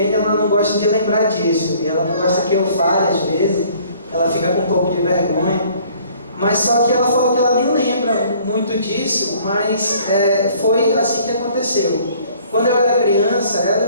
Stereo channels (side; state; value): both; inverted; correlation -0.57